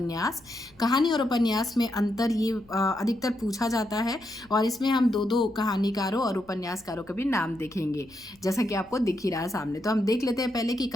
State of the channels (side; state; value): left; noise; rumble, 28 dB below the sound